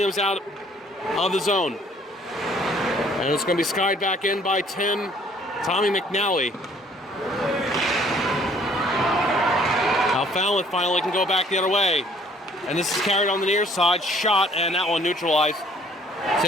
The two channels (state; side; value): normal; both; correlation 0.59